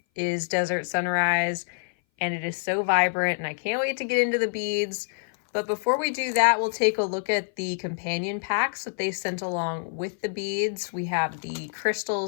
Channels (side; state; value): right; silent; 58 dB below the other